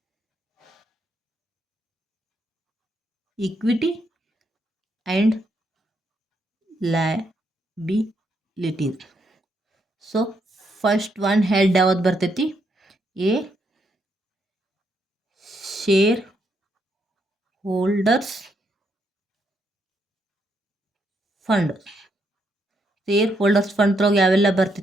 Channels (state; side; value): normal; both; correlation 0.77